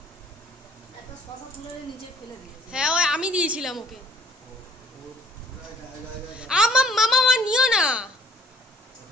হ্যাঁ ওই আমি দিয়েছিলাম ওকে। মামা নিও না,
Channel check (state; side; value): normal; both; correlation 0.57